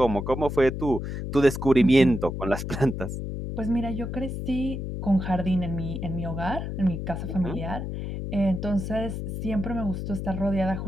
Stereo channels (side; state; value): left; noise; hum, 5 dB below the sound